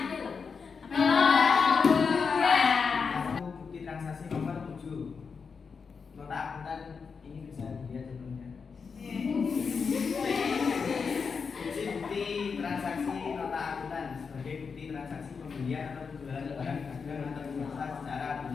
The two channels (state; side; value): quieter; right; 5.5 dB